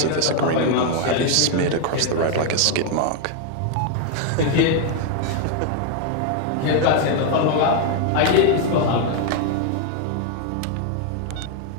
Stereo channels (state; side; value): different; both; correlation 0.00